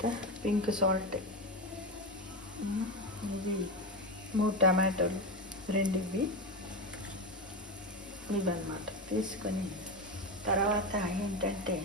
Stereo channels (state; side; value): normal; both; correlation 0.17